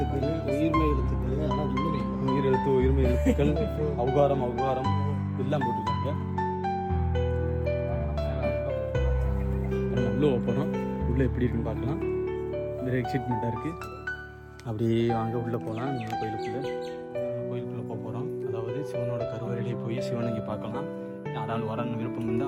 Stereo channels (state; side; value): identical; both; correlation 1.00